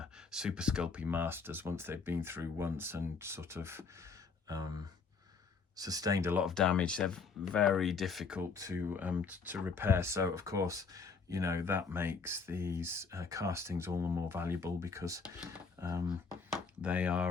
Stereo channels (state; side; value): quieter; right; 5.1 dB